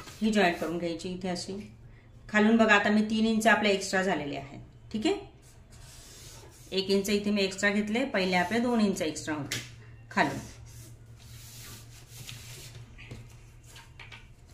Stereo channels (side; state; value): both; identical; correlation 1.00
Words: ही जॉईंट करून घ्यायची इथे अशी. खालून बघा आता मी 3 इंच आपले एक्स्ट्रा झालेले आहेत. ठीक आहे. 1 इंच इथे मी एक्स्ट्रा घेतले, पहिले आपले 2 इंच एक्स्ट्रा होते खालून.